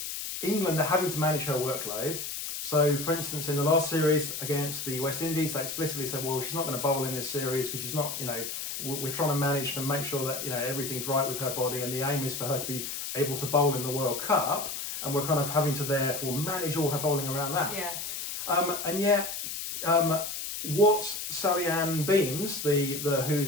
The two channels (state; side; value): noise; left; hiss, 5 dB below the sound